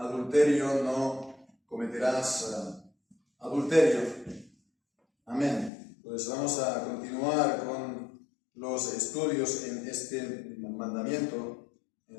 no cometerás adulterio. Amén. Pues vamos a continuar con los estudios en este mandamiento.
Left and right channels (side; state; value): right; drops out; at 5.7 s